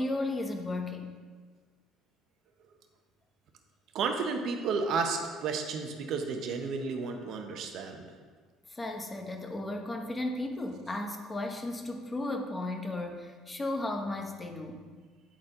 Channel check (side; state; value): both; normal; correlation 0.67